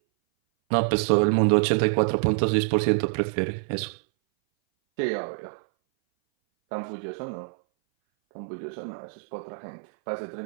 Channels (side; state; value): left; silent; 59 dB below the other